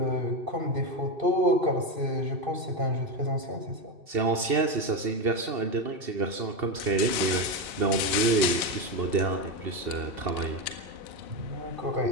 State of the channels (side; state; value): left; late; 2.7 ms